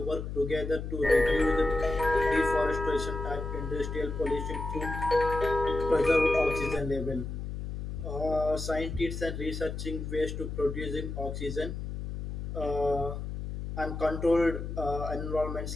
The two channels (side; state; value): left; noise; hum, 6 dB below the sound